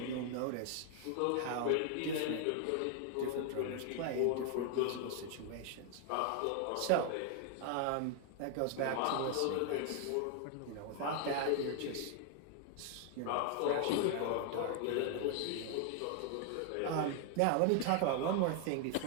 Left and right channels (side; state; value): both; different; correlation 0.00